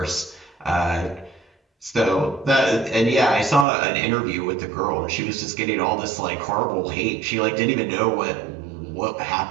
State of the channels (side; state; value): left; drops out; at 3.7 s